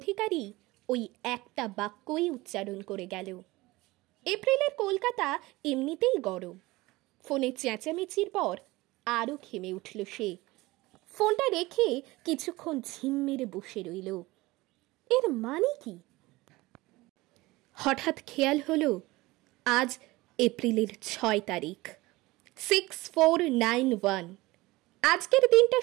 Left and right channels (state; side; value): quieter; left; 20.4 dB